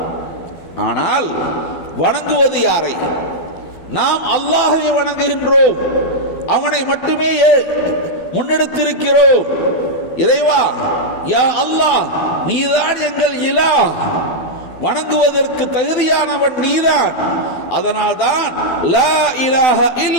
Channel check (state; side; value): late; right; 12 ms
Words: ஆனால் வணங்குவது யாரை? நாம் அல்லாஹ்வை வணங்குகின்றோம். அவனை மட்டுமே முன்னெடுத்திருக்கிறோம். இறைவா, யா அல்லாஹ், நீதான் எங்கள் இலாஹ், வணங்குவதற்கு தகுதியானவன் நீதான். அதனால்தான் லா இலாஹ